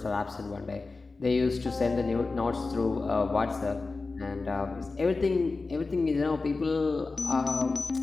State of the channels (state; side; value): quieter; right; 3.8 dB